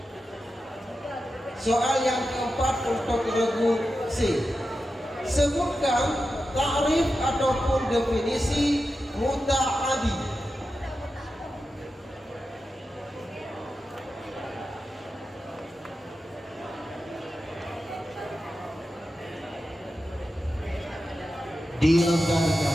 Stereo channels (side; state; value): both; normal; correlation 0.91